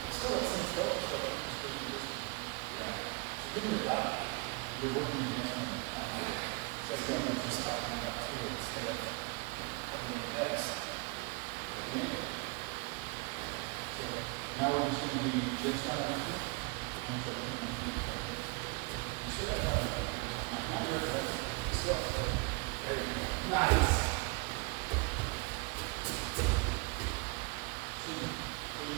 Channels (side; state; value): left; quieter; 29.4 dB